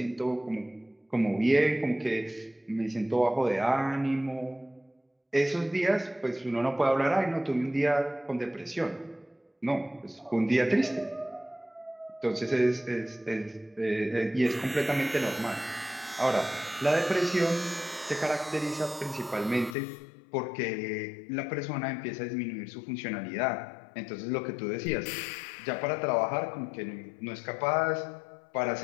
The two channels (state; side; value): drops out; right; at 19.8 s